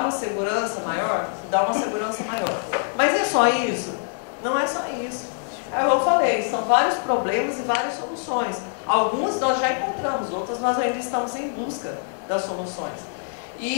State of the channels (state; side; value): silent; right; 62 dB below the other